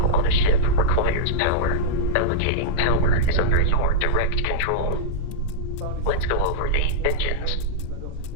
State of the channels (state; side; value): different; both; correlation -0.03